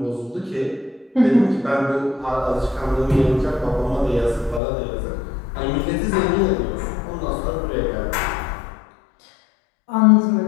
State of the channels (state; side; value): drops out; right; at 4.6 s